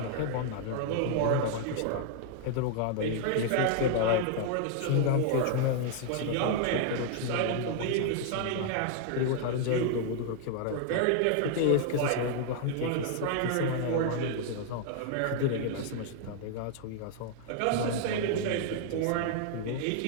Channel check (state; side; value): different; both; correlation 0.00